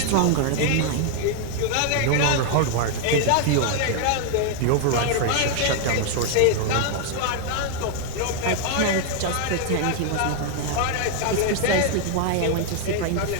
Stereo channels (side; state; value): both; different; correlation 0.00